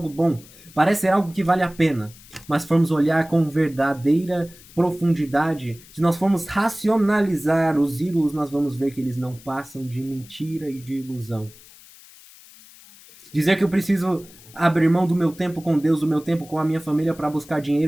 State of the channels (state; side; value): noise; left; hiss, 22 dB below the sound